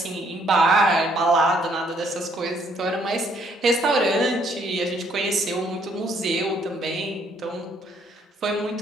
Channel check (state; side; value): normal; both; correlation 0.67